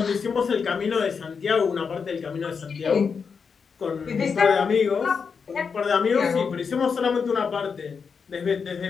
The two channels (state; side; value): quieter; right; 5.8 dB